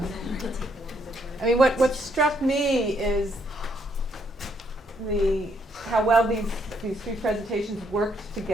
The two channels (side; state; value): both; normal; correlation 0.71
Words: I mean, what struck me is how well these three presentations worked